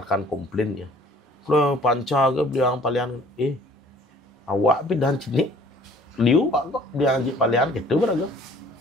komplain ya. Kalau panca ke bilang palian, awak bidan cini. Liu kok bilang palian gitu rago.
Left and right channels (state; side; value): normal; both; correlation 0.54